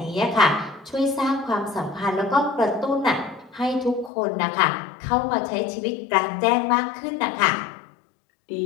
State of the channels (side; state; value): right; drops out; at 4.1 s